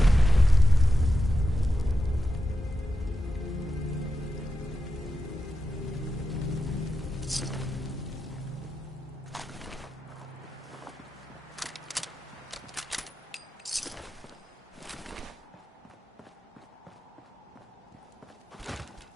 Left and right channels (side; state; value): both; normal; correlation 0.90